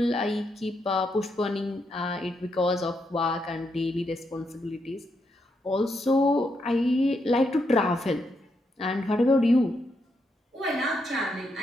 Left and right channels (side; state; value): both; normal; correlation 0.80